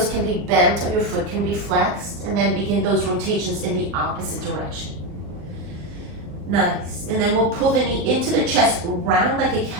can be bent or your foot can be flexed, and then begin those rotations in the opposite direction. Nice. And then we'll pull the knee into the chest, round like a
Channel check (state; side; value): late; left; 39 ms